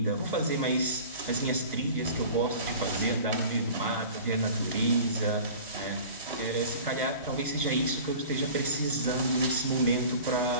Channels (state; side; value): inverted; both; correlation -0.40